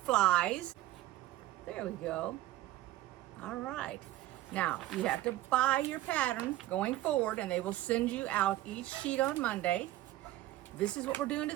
There we go. All right. Now, you have to buy your pattern going forward, and they will send you out each sheet on Monday. This is what we're doing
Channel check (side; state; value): left; quieter; 15.3 dB